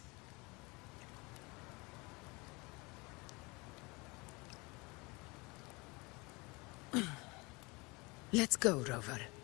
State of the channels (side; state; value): right; quieter; 26.2 dB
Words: Let's go, Rover.